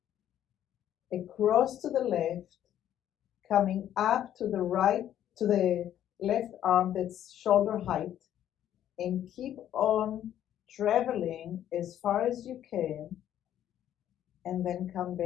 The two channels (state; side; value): quieter; right; 11.1 dB